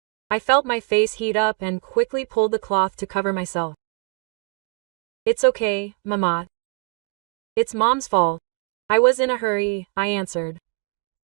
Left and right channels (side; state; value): left; quieter; 38.5 dB